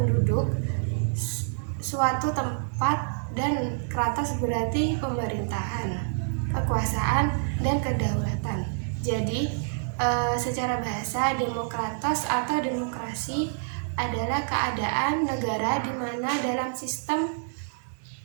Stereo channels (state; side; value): silent; left; digital silence